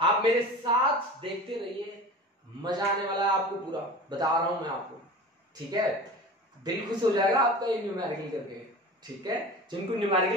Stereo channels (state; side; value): normal; both; correlation 0.35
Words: मेरे साथ देखते रहिए, मजा आने वाला है आपको, पूरा बता रहा हूं मैं आपको, ठीक है, दिल खुश हो जाएगा आपका ये न्यूमेरिकल करके, ठीक है। जिनको